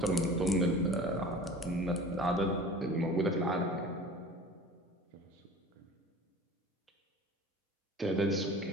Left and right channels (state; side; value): normal; both; correlation 0.41